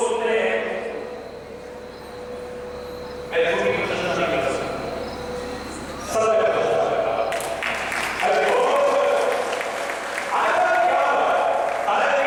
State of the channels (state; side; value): identical; both; correlation 1.00